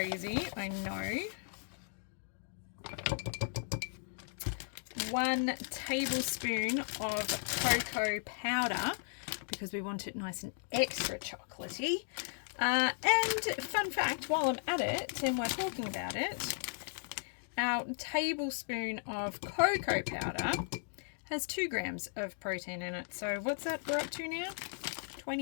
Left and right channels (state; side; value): silent; right; digital silence